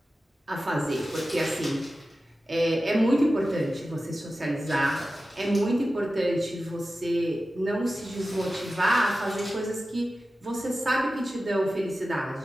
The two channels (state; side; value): normal; both; correlation 0.94